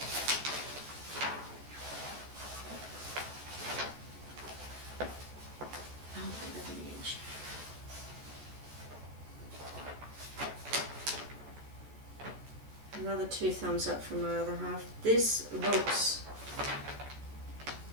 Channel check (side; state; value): left; late; 14 ms